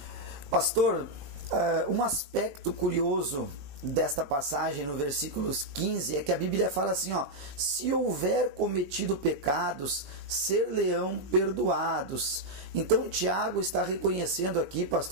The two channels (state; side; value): late; left; 20 ms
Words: Pastor, um aspecto curioso desta passagem, no versículos 15, é que a Bíblia fala assim, ó, se houver cometido pecados, ser-lhe-ão perdoados. Então Tiago está reconhecendo aqui,